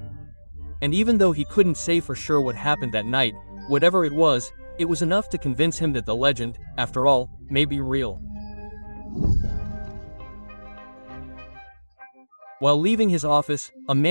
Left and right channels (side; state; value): both; inverted; correlation -1.00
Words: And even though he couldn't say for sure what happened that night, whatever it was enough to convince him that the legend, after all, may be real. While leaving his office, a